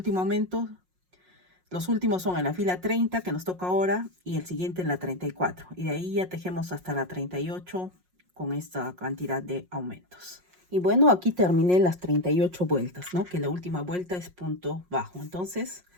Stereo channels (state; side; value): late; left; 5.5 ms